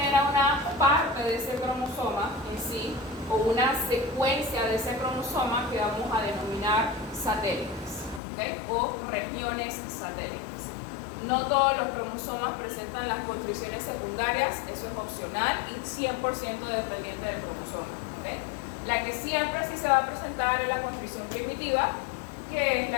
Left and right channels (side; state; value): right; drops out; at 8.2 s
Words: una parte de ese cromosoma en sí, o una secuencia de ese cromosoma que vamos a denominar satélites, ¿okay? O regiones satélites. No todos los cromosomas presentan las constricciones secundarias, eso es opcional y 100% dependiente del cromosoma, ¿okay? La que siempre sí se va a presentar es la constricción primitiva, que es